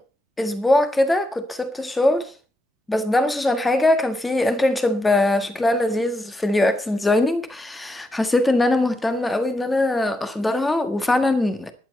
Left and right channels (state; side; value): normal; both; correlation 0.84